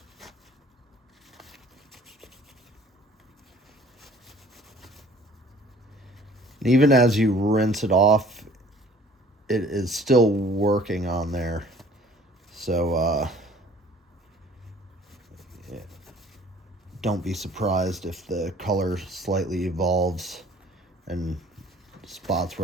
And even as you rinse it off, it is still working on there. So yeah, don't be surprised if the color slightly evolves and spots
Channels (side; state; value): both; normal; correlation 0.52